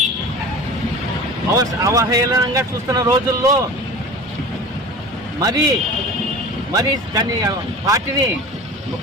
అవహేళనంగా చూస్తున్న రోజుల్లో మరి దాని పార్టీని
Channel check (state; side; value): normal; both; correlation 0.37